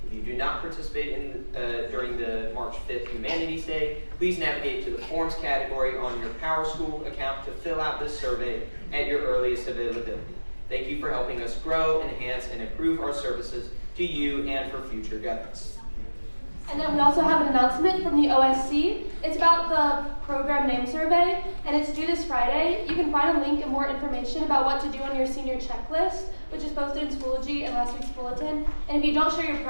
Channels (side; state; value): both; inverted; correlation -1.00